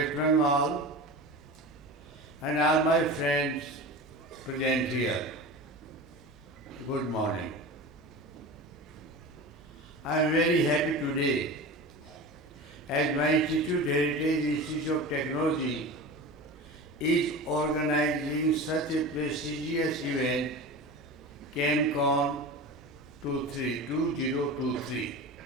and all my friends present here. Good morning. I am very happy today as my institute, Heritage Institute of Technology, is organizing such a prestigious event, ChemCon 2023.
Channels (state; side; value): normal; both; correlation 0.30